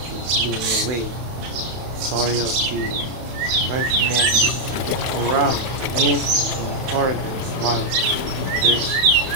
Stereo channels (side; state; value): left; late; 31 ms